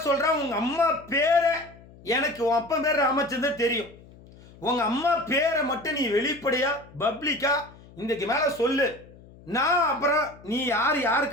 சொல்கிறேன், உங்கள் அம்மா பேரை எனக்கு உன் அப்பா பேர் ராமச்சந்திரன் தெரியும். உங்கள் அம்மா பேரை மட்டும் நீ வெளிப்படையாக பப்ளிக்காக இன்றைக்கு மேலே சொல்லு. நான் அப்புறம் நீ யார்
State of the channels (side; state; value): left; noise; hum, 22 dB below the sound